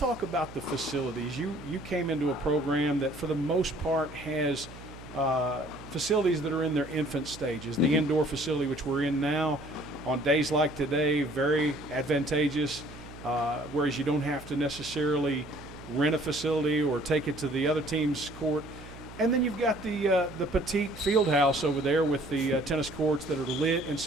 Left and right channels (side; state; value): right; noise; hum, 16 dB below the sound